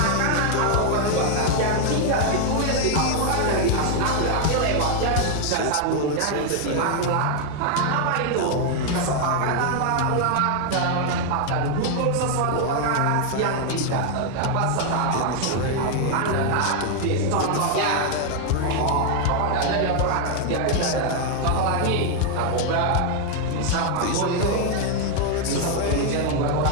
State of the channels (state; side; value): different; both; correlation 0.00